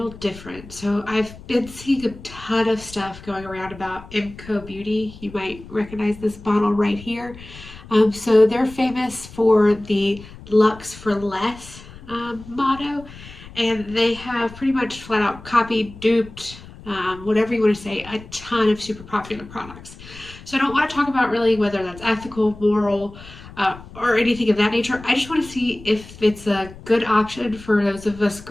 different. So I've been seeing a ton of stuff going around about MCoBeauty. You might recognize this bottle right here. So they're famous for the Lux for Less motto, and they have pretty much flat out copied, duped, whatever you want to say, a ton of super popular products. So I don't want to talk about really whether that's ethical, moral, or anything of that nature. I just want to see if it's a good option for those of us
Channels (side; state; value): left; noise; rumble, 17 dB below the sound